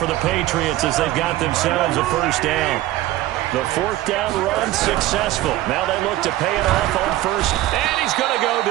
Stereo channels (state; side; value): quieter; left; 15.5 dB